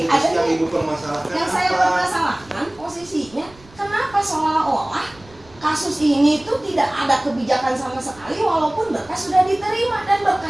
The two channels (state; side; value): noise; right; rumble, 25 dB below the sound